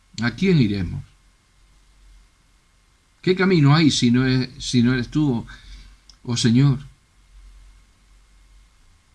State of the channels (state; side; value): identical; both; correlation 1.00